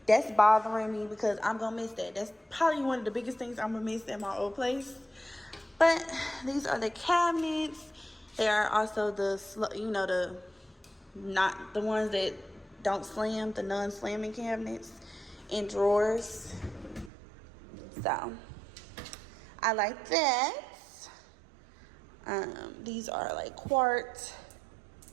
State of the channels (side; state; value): left; drops out; at 17.1 s